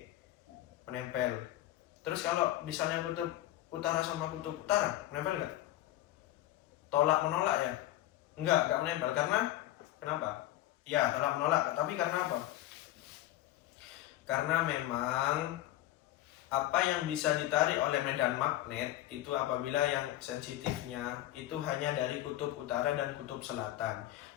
Menempel. Terus kalau misalnya kutub utara sama kutub utara, menempel nggak? Tolak menolak ya? Enggak menempel. Karena kenapa? Ya, tolak menolak. Tapi karena apa? Karena memang apa yang bisa ditarik oleh medan magnet itu apabila yang sensitifnya itu hanya dari kutub utara dan kutub selatan.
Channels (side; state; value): right; quieter; 14.6 dB